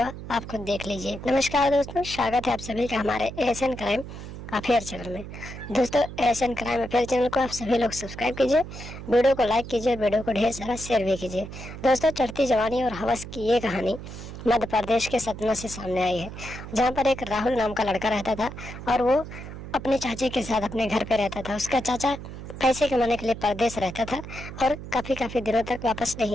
आप खुद देख लीजिए। नमस्कार दोस्तों, स्वागत है आप सभी का हमारे एशियन क्राइम अफेयर चैनल में। दोस्तों एशियन क्राइम अफेयर चैनल को आप सभी लोग सब्सक्राइब कीजिए, वीडियो को लाइक कीजिए, वीडियो को ढेर सारा शेयर भी कीजिए। दोस्तों चढ़ती जवानी और हवस की ये कहानी मध्य प्रदेश के सतना से सामने आई है, जहाँ पर एक राहुल नाम का लड़का रहता था और वो अपने चाचे के साथ अपने घर पे रहता था। उसका चाचा पैसे कमाने के लिए परदेश रहता था और काफ़ी दिनों तक वापस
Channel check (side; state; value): right; noise; hum, 11 dB below the sound